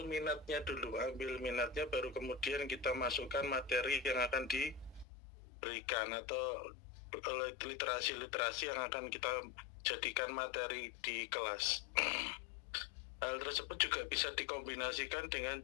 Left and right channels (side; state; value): right; drops out; at 5.1 s